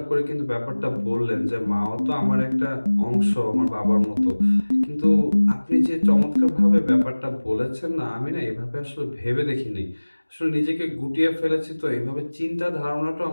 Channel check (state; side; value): inverted; both; correlation -1.00